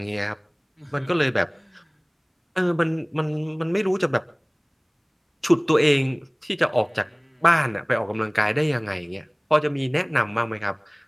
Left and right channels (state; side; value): identical; both; correlation 1.00